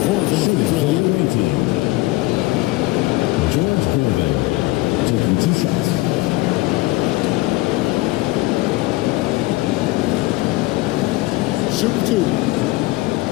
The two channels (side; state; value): right; quieter; 20.3 dB